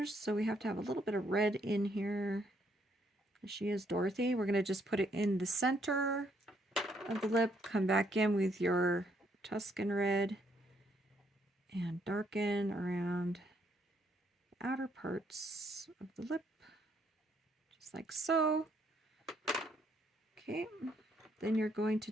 so we have to have a little bit of red in here. She is Dorothy. We're going to just put it in the center of the lip. Come back in with your Tuscan red and darken around the outer parts of the lip, just like so. Okay, then you're going to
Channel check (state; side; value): normal; both; correlation 0.71